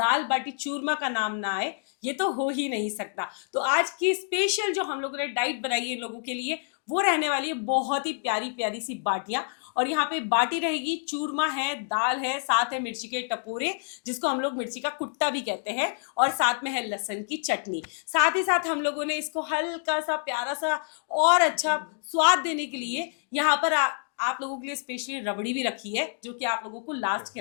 बाटी चूरमा का नाम ना आए, ये तो हो ही नहीं सकता। तो आज की स्पेशल जो हम लोगों ने डाइट बनाई है लोगों के लिए, वो रहने वाली है बहुत ही प्यारी प्यारी सी बाटियां। और यहाँ पे बाटी रहेगी, चूरमा है, दाल है, साथ है मिर्ची के टपोरे जिसको हम लोग मिर्ची का कुट्टा भी कहते हैं, और साथ में है लहसुन की चटनी। साथ ही साथ हम लोगों ने इसको हल्का सा प्यारा सा और अच्छा स्वाद देने के लिए यहाँ पर आप लोगों के लिए स्पेशली रबड़ी भी रखी है, जो कि आप लोगों को लास्ट के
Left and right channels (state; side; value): silent; right; digital silence